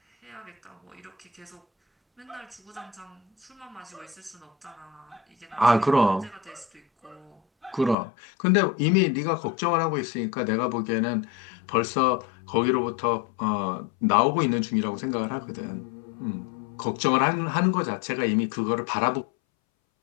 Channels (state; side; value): drops out; right; at 8.0 s